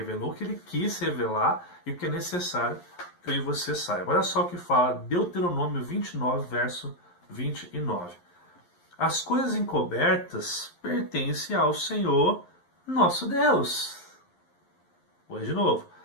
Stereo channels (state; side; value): late; right; 11 ms